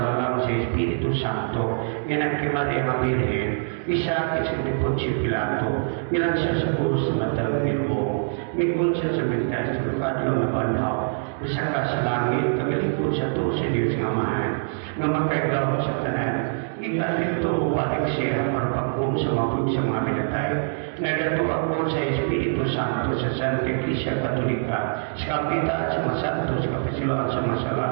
sa Espiritu Santo, yan kay Maria ang Birhen, isa sa Poncio Pilato, ilan siya sa puso sa matang Ginoo, mikon siya sa mentas sa lugar na banhaw, isa ka sa langit, tagalikod sa to sa Diyos ng Amahan, nga makagawa sa tanan. Ikalit ito upalik siya para pagkong sa mapud sa mga pinatay. Nagatuwa ko sa Espiritu Santo sa Santa Iglesia Katolika, sa Kapita at sa Masanto, sa Kapisiluan sa Masala,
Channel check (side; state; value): left; silent; digital silence